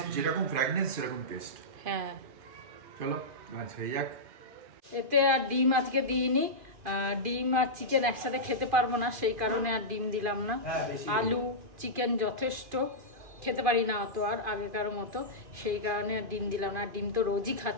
যেরকম ফ্র্যাগনেন্স সেরকম টেস্ট। হ্যাঁ, চলো ভাজ হয়ে যাক। এতে আর ডিম আজকে দিইনি, ডিম আর চিকেন একসাথে খেতে পারবো না, সেই কারণে আর ডিম দিলাম না। আলু চিকেন যথেষ্ট, খেতে পারি না অত আর আগেকার মতো, সেই কারণে আর ডিম দিলাম না। ডিম তো রোজই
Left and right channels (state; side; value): late; left; 2.5 ms